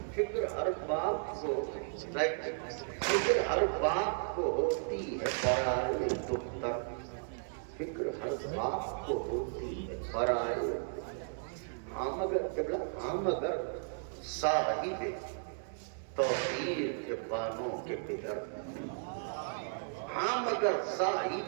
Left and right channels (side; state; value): left; silent; digital silence